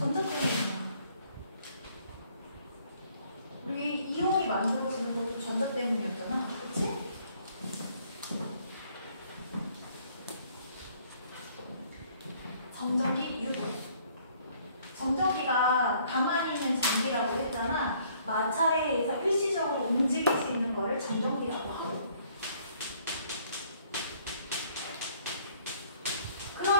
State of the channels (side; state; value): both; inverted; correlation -0.62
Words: 때문이야. 우리 이온이 만들어지는 것도 전자 때문이었잖아. 그치? 정전기 유도. 정전기가 가만히 있는 전기라고 했잖아. 마찰에 의해서 일시적으로 움직일 수 있는 거를 정전기라고 하고.